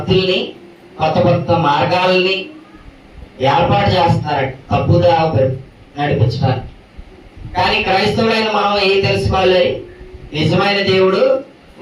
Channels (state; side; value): identical; both; correlation 1.00